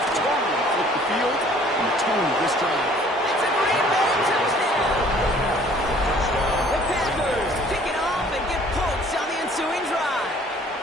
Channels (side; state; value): both; normal; correlation 0.55